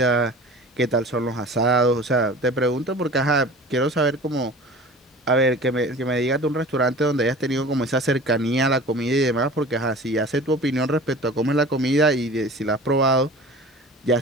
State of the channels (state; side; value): normal; both; correlation 0.40